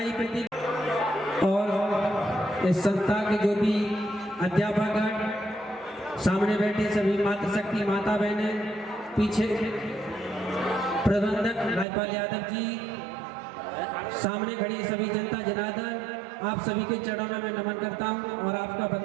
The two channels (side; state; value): left; drops out; at 11.9 s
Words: प्रदीप और इस संस्था के जो भी अध्यापक सामने बैठे सभी मातृशक्ति माता बहनें, पीछे प्रबंधक राजपाल यादव जी, सामने खड़ी सभी जनता जनार्दन, आप सभी के चरणों में मैं नमन करता हूं और आपका